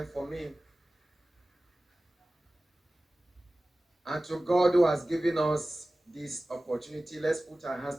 for me. And to God who has given us this opportunity, let's put our hands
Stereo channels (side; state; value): both; normal; correlation 0.97